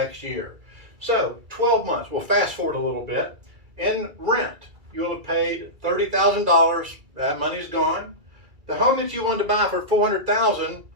year. So 12 months, we'll fast forward a little bit. In rent, you'll have paid $30,000. That money's gone. The home that you wanted to buy for $400,000,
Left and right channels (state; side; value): late; left; 2.3 ms